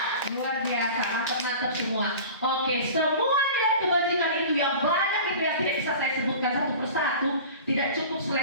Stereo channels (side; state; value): both; inverted; correlation -0.38